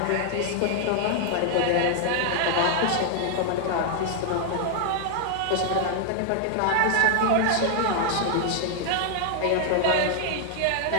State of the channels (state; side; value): different; both; correlation 0.00